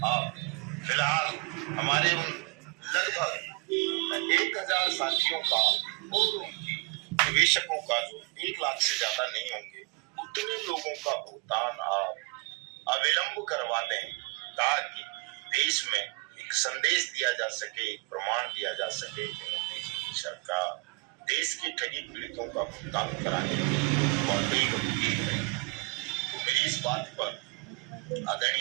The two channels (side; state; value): left; quieter; 29.3 dB